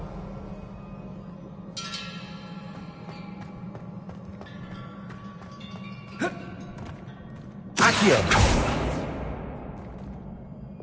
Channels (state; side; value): identical; both; correlation 1.00